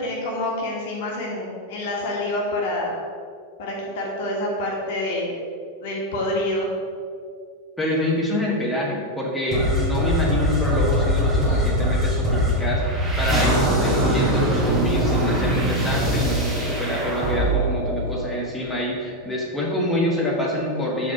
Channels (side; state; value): both; normal; correlation 0.05